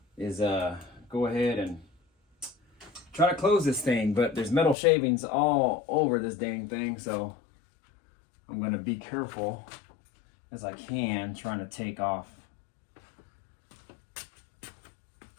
is go ahead and try to close this thing, but there's metal shavings all over this dang thing, so I'm going to be careful as I can, trying to take off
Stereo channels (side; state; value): right; drops out; at 4.8 s